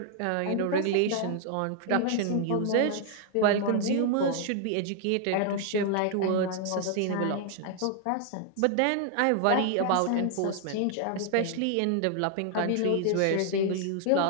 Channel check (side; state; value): both; different; correlation 0.00